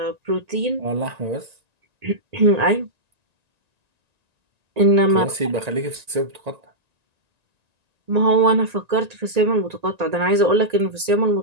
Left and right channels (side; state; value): left; late; 1.9 ms